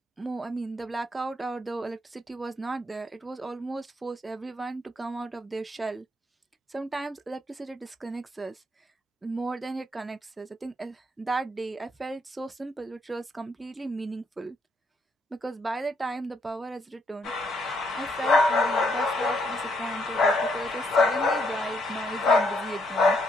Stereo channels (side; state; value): both; normal; correlation 0.73